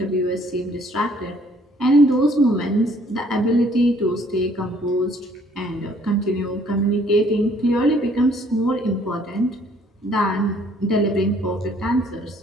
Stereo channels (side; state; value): both; normal; correlation 0.61